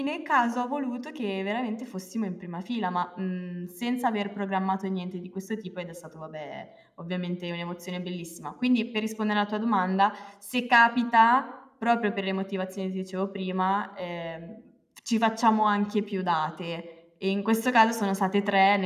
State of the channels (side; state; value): both; identical; correlation 1.00